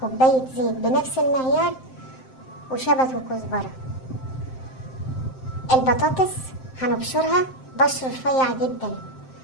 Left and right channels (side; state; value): right; late; 7.7 ms